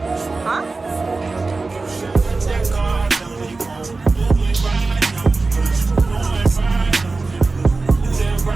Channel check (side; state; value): left; quieter; 3.7 dB